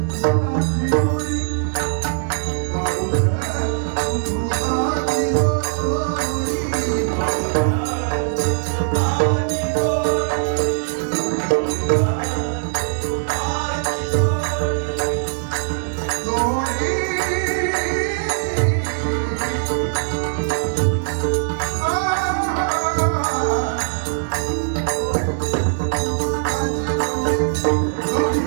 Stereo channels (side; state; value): left; silent; digital silence